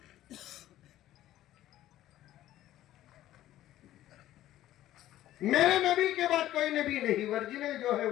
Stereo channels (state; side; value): quieter; right; 13.8 dB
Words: میرے نبی کے بعد کوئی نبی نہیں. ورجنل جو ہے